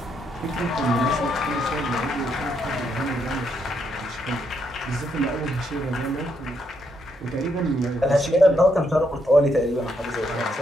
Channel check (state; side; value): normal; both; correlation 0.76